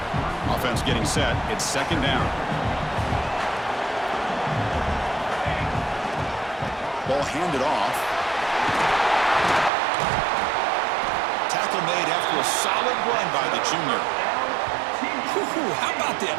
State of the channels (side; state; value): left; drops out; at 9.7 s